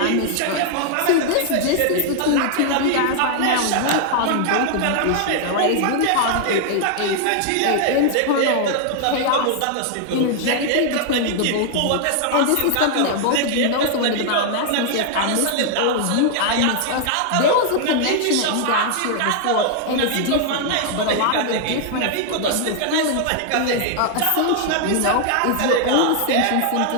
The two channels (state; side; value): different; both; correlation 0.00